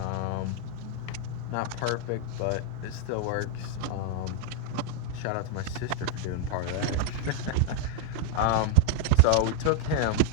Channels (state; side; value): different; both; correlation 0.00